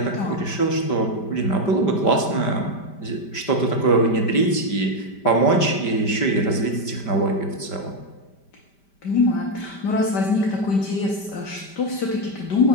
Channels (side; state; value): right; late; 5.1 ms